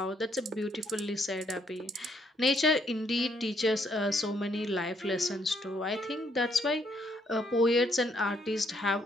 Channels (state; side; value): normal; both; correlation 0.71